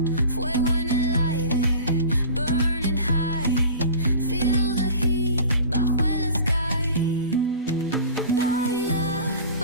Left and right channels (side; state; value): both; inverted; correlation -0.38